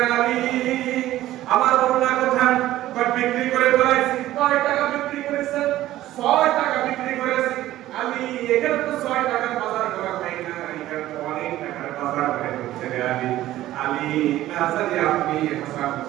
আলী আমার ওড়না কোথায়? বিক্রি করে ফেলাইছি। 6 টাকা বিক্রি করেছেন? 6 টাকা বিক্রি করেছি। আলী এখানে তো 6 টাকার বাজার করা হয় না, এখানে তো অনেক টাকার বাজার করে হচ্ছে রে আলী। আলী না জানি আপনি হাসান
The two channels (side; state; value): left; quieter; 14.6 dB